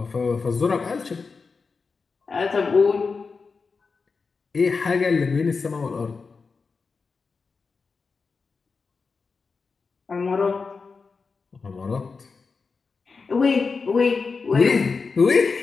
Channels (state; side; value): quieter; right; 4.7 dB